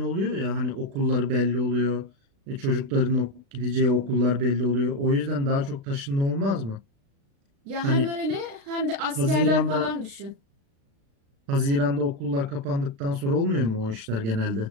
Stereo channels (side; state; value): left; late; 36 ms